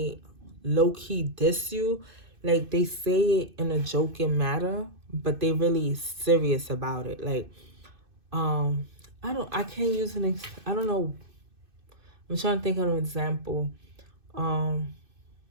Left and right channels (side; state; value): left; late; 2.6 ms